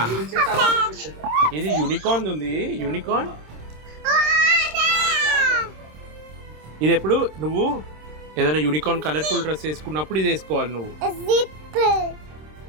ఇది యూనికార్న్ ఉంది, యూనికార్న్. ఇది ఎప్పుడు నువ్వు ఏదైనా యూనికార్న్ కలర్ఫుల్ డ్రెస్ వేసుకున్నప్పుడు ఇది వేసుకోవాలి నువ్వు. జిప్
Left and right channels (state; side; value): late; left; 26 ms